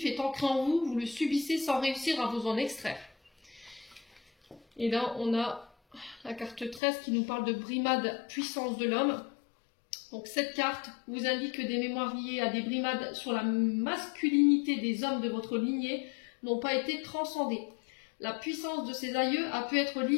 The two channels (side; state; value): right; drops out; at 6.8 s